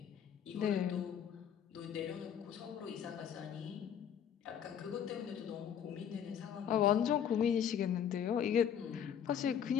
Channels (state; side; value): quieter; right; 8.7 dB